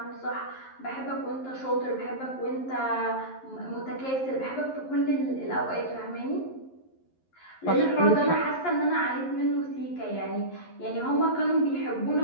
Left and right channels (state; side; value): late; right; 11 ms